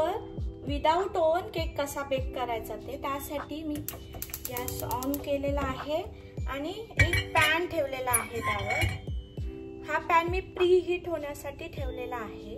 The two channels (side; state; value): both; identical; correlation 1.00